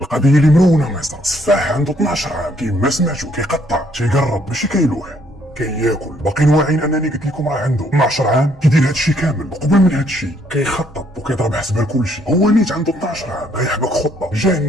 القضيه اللي مرونه مصر. سفاح عنده 12 عام كيما سمعتو كيقطع تيقرب ماشي كيلوح كياكل. باقيين واعيين انني قلت لكم راه عنده 12 عام كيدير هادشي كامل. وقبل من هادشي كيخطط وكيضرب حسبه لكلشي. هو نيت عنده 12 عام غيحبك خطه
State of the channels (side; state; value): both; normal; correlation 0.67